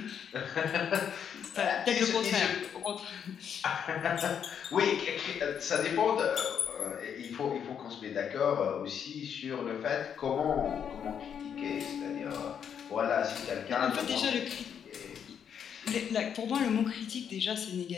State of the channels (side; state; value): right; quieter; 8.0 dB